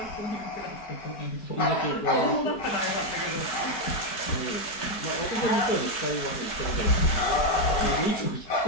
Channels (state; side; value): late; right; 4.6 ms